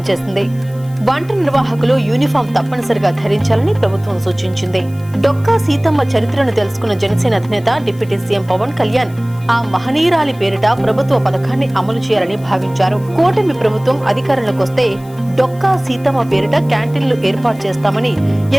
చేసింది. వంట నిర్వాహకులు యూనిఫామ్ తప్పనిసరిగా ధరించాలని ప్రభుత్వం సూచించింది. డొక్కా సీతమ్మ చరిత్రను తెలుసుకున్న జనసేన అధినేత డిప్యూటీ సీఎం పవన్ కళ్యాణ్ ఆ మహనీయురాలి పేరిట ప్రభుత్వ పథకాన్ని అమలు చేయాలని భావించారు. కూటమి ప్రభుత్వం అధికారంలోకి వస్తే డొక్కా సీతమ్మ పేరిట క్యాంటీన్లు ఏర్పాటు చేస్తామని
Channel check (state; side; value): noise; left; hiss, 25 dB below the sound